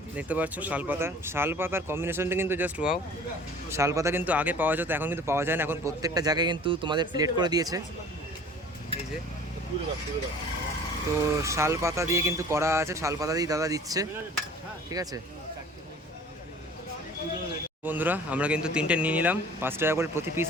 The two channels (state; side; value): normal; both; correlation 0.47